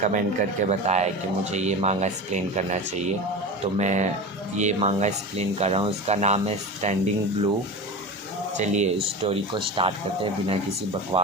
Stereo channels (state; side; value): normal; both; correlation 0.27